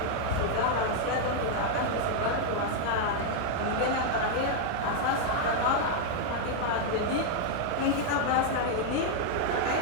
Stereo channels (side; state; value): both; different; correlation 0.00